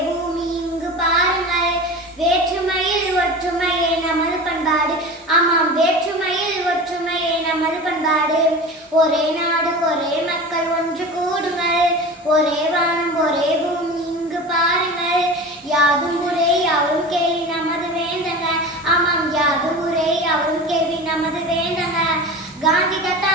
பூமி இங்கு பாருங்கள். வேற்றுமையில் ஒற்றுமையே நமது பண்பாடு, ஆமாம் வேற்றுமையில் ஒற்றுமையே நமது பண்பாடு. ஒரே நாடு ஒரே மக்கள் ஒன்று கூடுங்கள், ஒரே வானம் ஒரே பூமி இங்கு பாருங்கள். யாதும் ஊரே யாவரும் கேள்வி நமது வேந்தங்க, ஆமாம் யாதும் ஊரே யாவரும் கேள்வி நமது வேந்தங்க. காந்தி தாத்தா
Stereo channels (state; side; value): normal; both; correlation 0.32